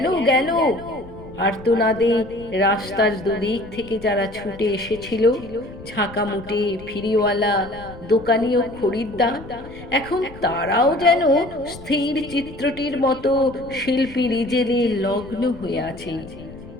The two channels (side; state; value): left; noise; rumble, 17 dB below the sound